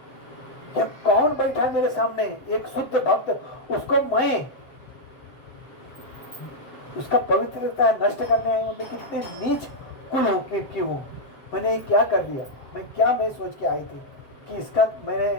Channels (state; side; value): late; right; 7.5 ms